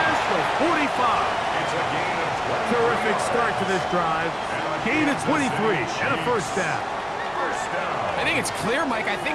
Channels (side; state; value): both; identical; correlation 1.00